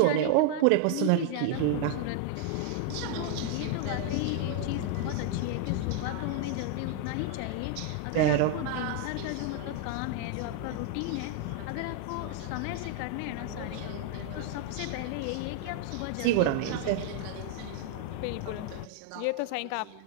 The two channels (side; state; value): both; different; correlation 0.00